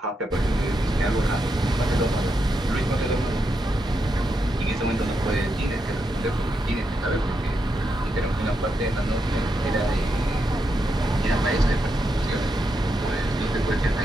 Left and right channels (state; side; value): normal; both; correlation 0.83